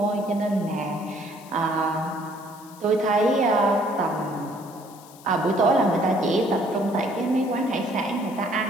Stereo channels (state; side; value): noise; left; hiss, 22 dB below the sound